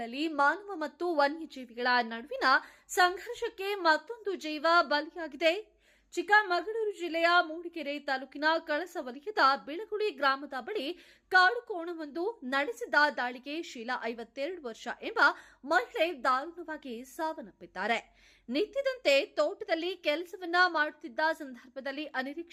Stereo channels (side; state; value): both; identical; correlation 1.00